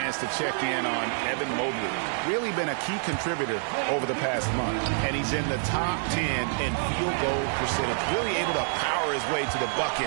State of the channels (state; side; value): silent; left; digital silence